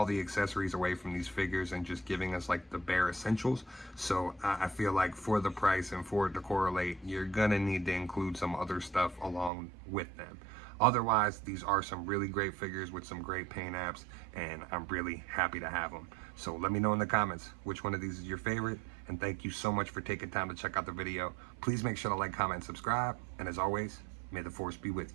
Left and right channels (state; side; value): drops out; left; at 9.5 s